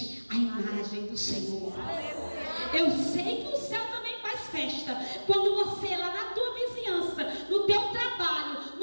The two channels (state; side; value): inverted; both; correlation -1.00